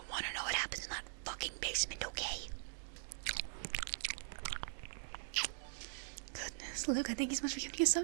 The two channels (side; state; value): left; silent; digital silence